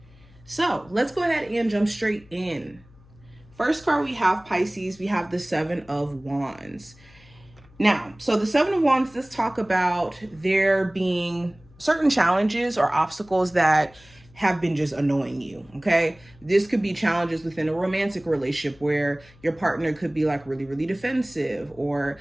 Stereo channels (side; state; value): left; noise; hum, 26 dB below the sound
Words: So let's go ahead and jump straight in. First card we have, Pisces, we have the 7 of Wands. Now, so the 7 of Wands, let's talk about there being certain challenges or obstacles that have been just annoying you, okay? This could be challenges within a romantic relationship where your partner could be like really, really defensive, or